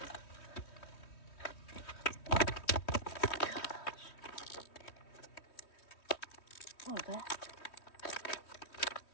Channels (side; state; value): right; late; 3.1 ms